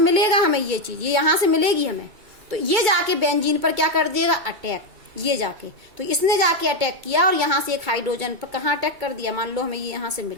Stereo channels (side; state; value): left; late; 2.3 ms